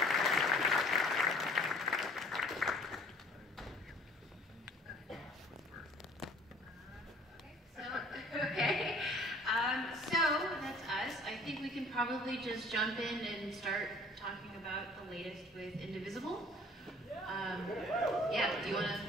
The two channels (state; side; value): normal; both; correlation 0.53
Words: So that's us. I think we can probably just jump in and start talking about the latest with Indivisible. Yeah, do you want to?